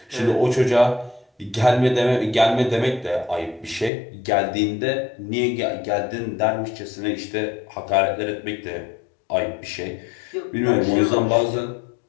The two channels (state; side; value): drops out; right; at 3.9 s